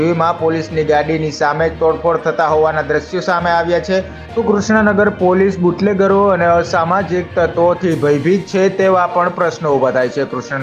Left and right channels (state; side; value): identical; both; correlation 1.00